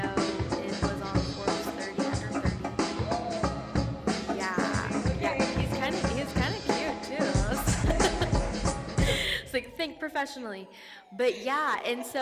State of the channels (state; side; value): identical; both; correlation 1.00